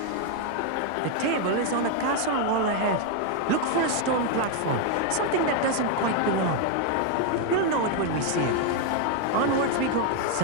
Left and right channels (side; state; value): both; different; correlation 0.01